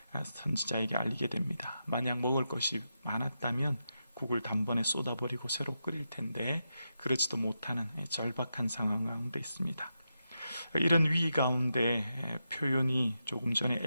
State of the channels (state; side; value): inverted; both; correlation -0.86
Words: 선지자에게 알리게 됩니다. 만약 먹을 것이 많았다면 국을 단번에 쏟아버리고 새로 끓일 텐데 그렇지도 못하는 절박한 상황 가운데 있습니다. 이런 위기 가운데 표현이 조금 전에